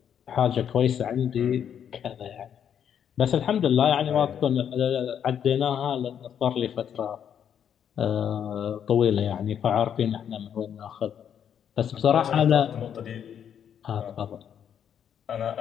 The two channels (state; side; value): quieter; right; 8.7 dB